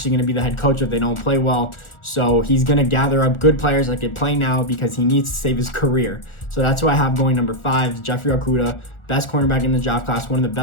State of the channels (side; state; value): right; late; 1.4 ms